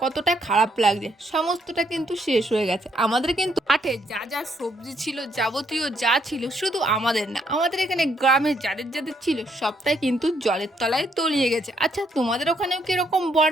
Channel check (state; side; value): normal; both; correlation 0.72